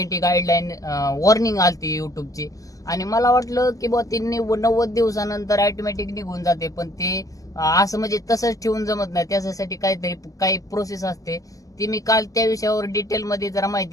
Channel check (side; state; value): right; late; 0.17 ms